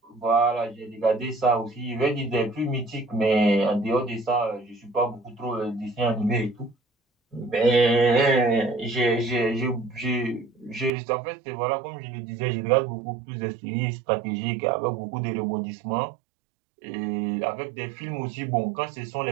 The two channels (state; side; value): drops out; left; at 10.9 s